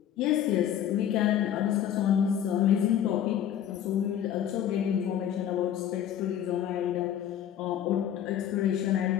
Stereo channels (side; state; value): right; quieter; 10.1 dB